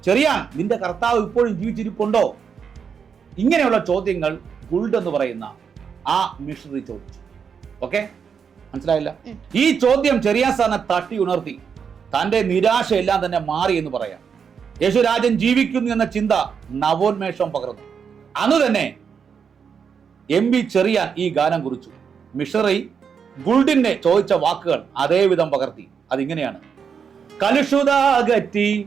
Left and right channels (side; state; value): left; quieter; 6.7 dB